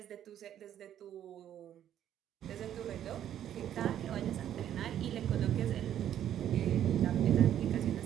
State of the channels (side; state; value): left; quieter; 10.7 dB